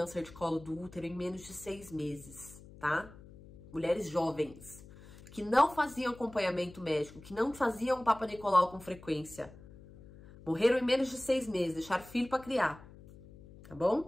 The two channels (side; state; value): left; noise; hum, 19 dB below the sound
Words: de colo do útero em menos de 6 meses, tá? Mulheres jovens, que não faziam acompanhamento médico, que não faziam Papa Nicolau com frequência. Morreram em menos de 6 meses, deixaram filho para criar, tá